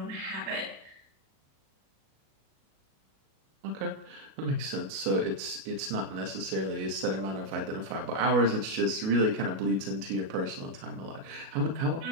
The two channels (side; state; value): left; late; 37 ms